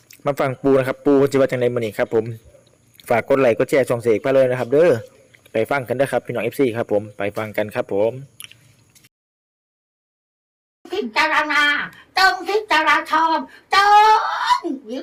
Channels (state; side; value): identical; both; correlation 1.00